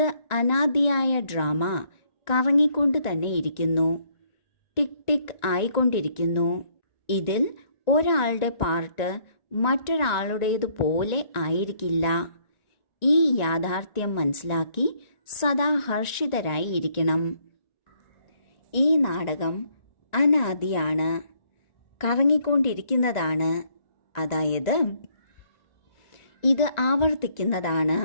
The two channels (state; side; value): late; right; 1.9 ms